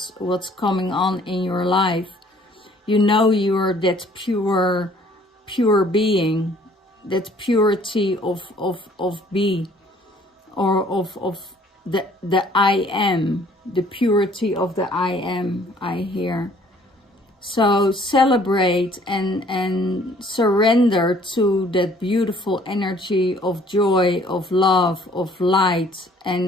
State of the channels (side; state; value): both; normal; correlation 0.58